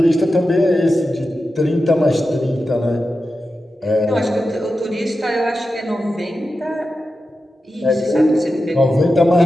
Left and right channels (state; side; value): normal; both; correlation 0.91